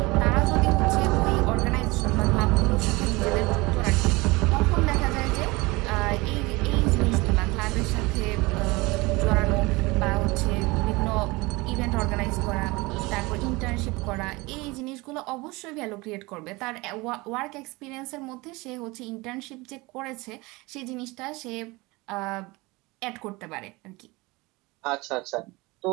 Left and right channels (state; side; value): quieter; left; 23.4 dB